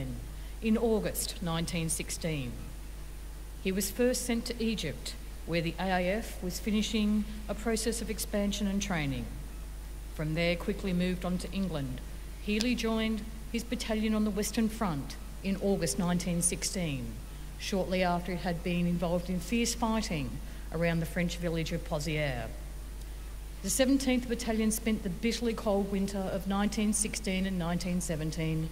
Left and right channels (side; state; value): both; identical; correlation 1.00